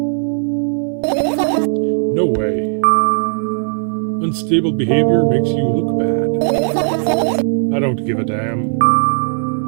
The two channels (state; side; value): silent; left; 58 dB below the other